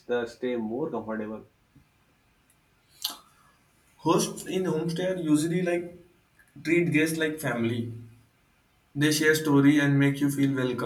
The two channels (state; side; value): identical; both; correlation 1.00